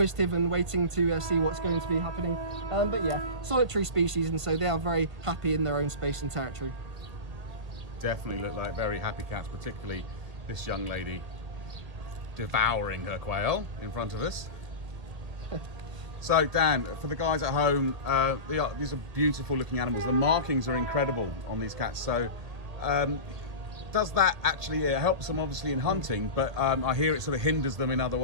and waiting to see what's going to be happening. But yeah, solitary species, and so they are very happy in their own space and territory. Definitely look like very happy cats, particularly this young lady devouring her quail in front of us. So Dan, for the guys at home, these are beautiful looking animals. The markings are incredible on these cats. So does that actually helps them obviously in hunting, but I hear it sort of hinders them in other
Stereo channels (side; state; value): left; late; 1.6 ms